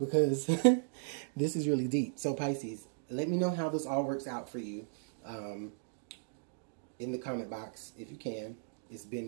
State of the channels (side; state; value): left; silent; digital silence